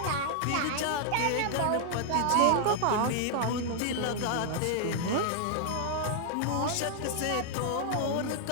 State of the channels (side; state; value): both; different; correlation 0.00